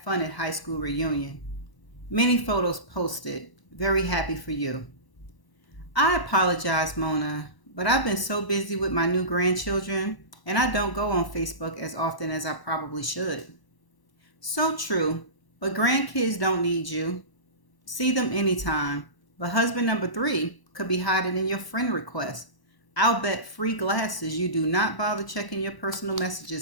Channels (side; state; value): right; late; 1.0 ms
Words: at high school reunion. Many photos posted. Very happy for you. I apologize, Mona, but I've been so busy with my new grandchildren and I don't go on Facebook as often as I probably should. So true, but grandkids don't need you. See them anytime, but husband number 3 could be hiding in your friend request. I'll bet free glasses you do not bother checking your personal